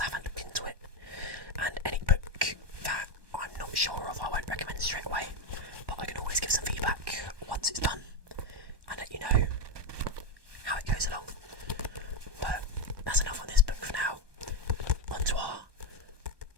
haven't looked into it. And any book that I'm not sure of, I won't recommend straight away. But I can always give some feedback once it's done, and let you know how it goes along. But that's enough on this book for now. On to our,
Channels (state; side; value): late; left; 1.1 ms